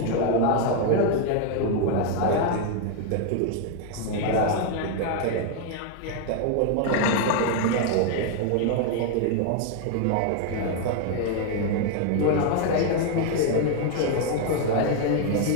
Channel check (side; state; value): both; different; correlation 0.01